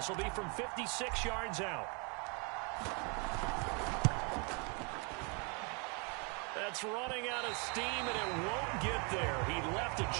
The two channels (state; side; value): quieter; left; 33.7 dB